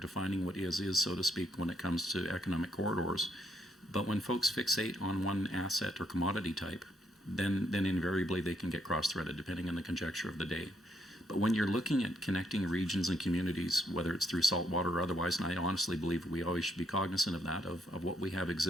what is, so to speak, when it comes to economic corridors. But when folks fixate on one asset or commodity type, then invariably they can get cross-threaded depending on the conjecture of the day. But when you're looking at connecting regions and communities, whether it's through saltwater or otherwise, and I honestly believe we always should be cognizant of that, of what we have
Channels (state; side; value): normal; both; correlation 0.74